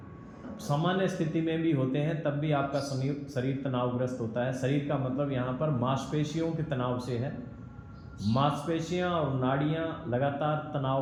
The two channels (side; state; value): both; identical; correlation 1.00